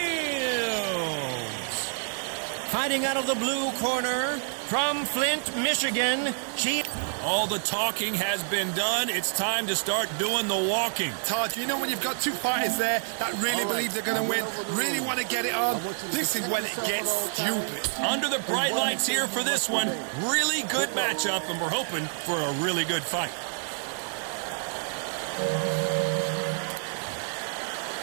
Fighting out of the blue corner from Flint, Michigan, All the talking has been done. It's time to start doing the walking. Todd, you know when you've got two fighters there that really believe they're going to win, really want to get it on, this is when it gets stupid. Under the bright lights here for this one. Really good matchup, and we're hoping for a really good fight.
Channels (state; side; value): silent; left; digital silence